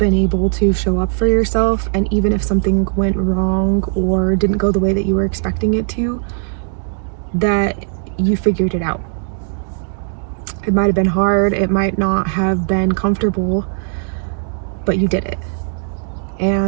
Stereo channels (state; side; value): silent; left; digital silence